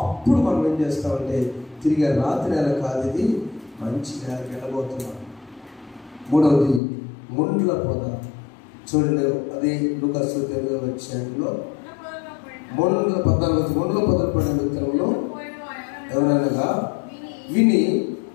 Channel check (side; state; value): right; drops out; at 6.8 s